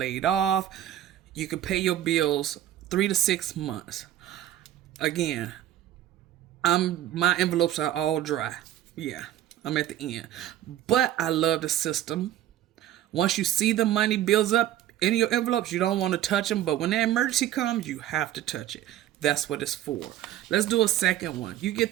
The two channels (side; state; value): left; quieter; 12.4 dB